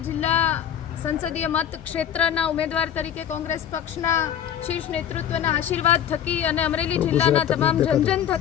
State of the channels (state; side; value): quieter; right; 9.6 dB